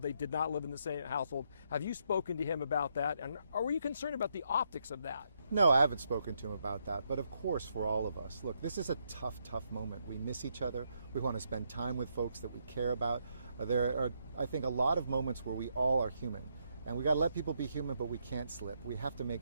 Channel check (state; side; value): inverted; both; correlation -0.77